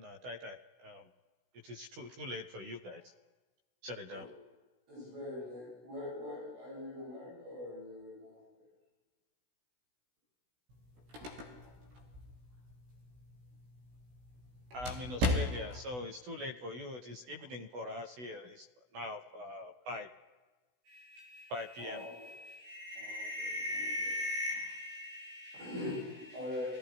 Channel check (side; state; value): left; late; 16 ms